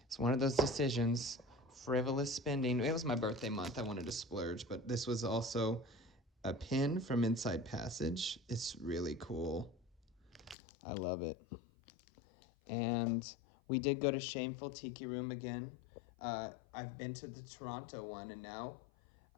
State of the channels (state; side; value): drops out; right; at 10.6 s